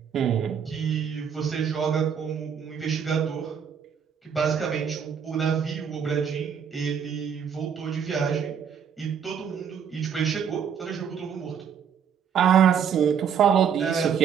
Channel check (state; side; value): quieter; left; 7.6 dB